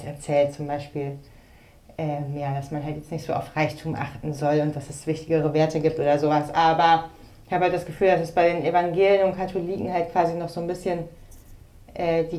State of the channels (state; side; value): identical; both; correlation 1.00